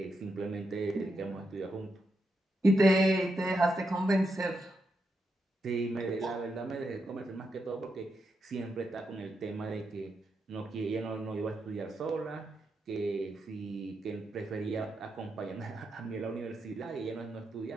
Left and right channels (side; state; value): both; normal; correlation 0.84